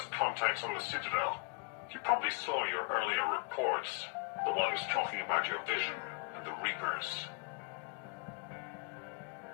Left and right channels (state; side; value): quieter; right; 33.9 dB